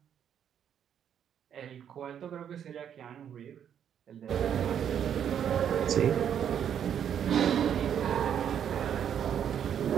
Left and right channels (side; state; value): left; quieter; 8.9 dB